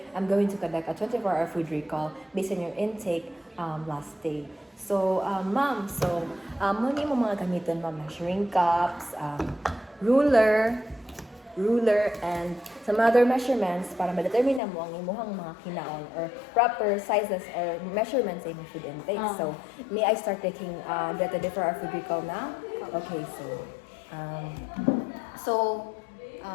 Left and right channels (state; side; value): drops out; right; at 14.6 s